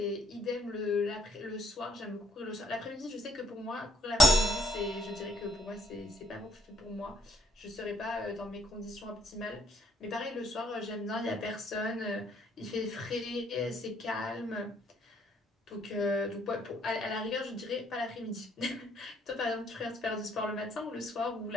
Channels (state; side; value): normal; both; correlation 0.66